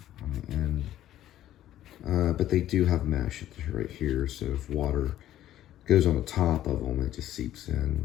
on the end. But they do have mesh right here, so if water goes on the top of them, it just seeps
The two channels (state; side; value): quieter; right; 12.8 dB